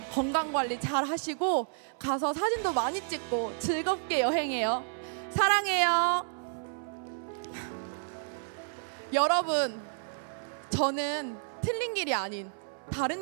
건강관리 잘 하시고 가서 사진도 많이 찍고 즐겁게 여행해요. 사랑해요. 여러분, 저는 틀린 길이 아닌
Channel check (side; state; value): left; silent; 57 dB below the other